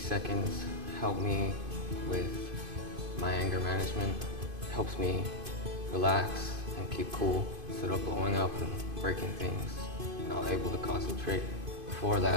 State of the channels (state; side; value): late; left; 2.5 ms